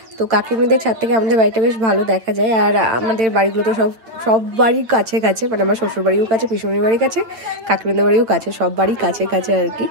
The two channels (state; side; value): late; left; 8.9 ms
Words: তো কাকিমাদের ছাদ থেকে আমাদের বাড়িটা বেশ ভালো দেখা যায়। আর আমাদের বাড়িগুলো তো সব বাড়ির কাছে কাছে, মানে আমার শ্বশুর বাড়িও কাছে, পিসুমনির বাড়ির কাছে, কাকিমাদের বাড়িও কাছে, সব বাড়ি কাছে কাছে আর কি।